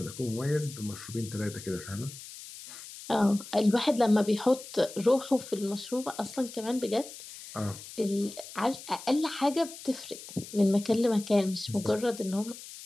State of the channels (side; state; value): left; noise; hiss, 14 dB below the sound